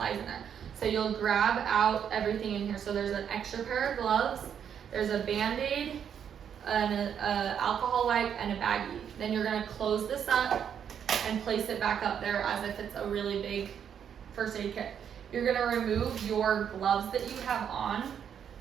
in there. So you'll grab out everything in here. So there's an extra pair of gloves, there's a Band-Aid, an alcohol wipe, and a baggie. Then you're going to close this up and place it back up there as if it's a really big first aid kit. You're going to remove your gloves that you have on,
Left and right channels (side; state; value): left; quieter; 8.3 dB